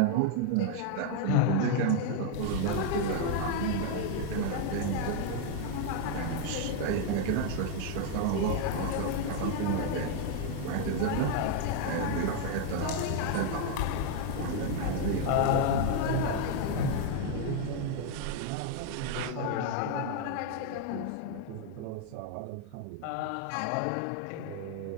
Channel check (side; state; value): both; different; correlation 0.00